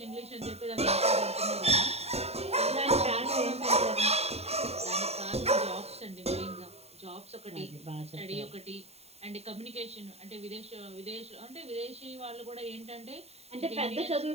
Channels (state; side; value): late; left; 0.30 ms